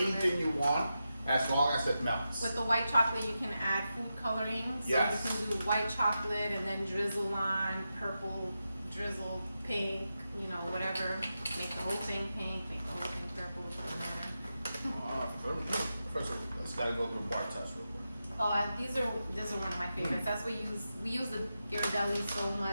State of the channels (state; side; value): inverted; both; correlation -0.89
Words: anything you want, as long as it melts. With the white chocolate, you can add food coloring. So you can do white chocolate and then drizzle on purple, drizzle pink, you know, whatever. Make the whole thing pink, make the whole thing purple. First, let's gotta go through bar test real quick. Oh, these are one of my favorites. That's what we use the Ghirardelli so